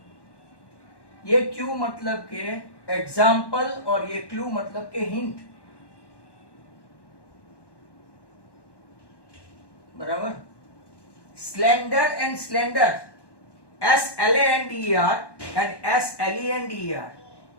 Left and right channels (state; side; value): late; right; 1.1 ms